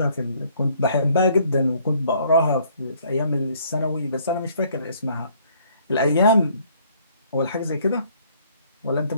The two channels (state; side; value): inverted; both; correlation -0.63